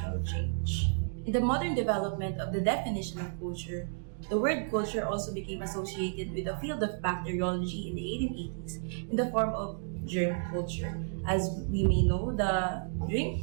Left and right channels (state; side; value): silent; left; digital silence